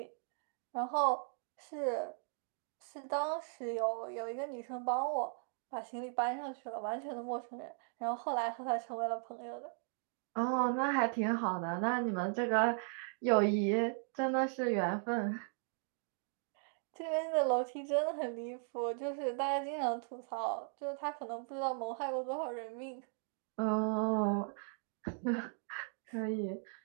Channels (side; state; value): left; silent; 53 dB below the other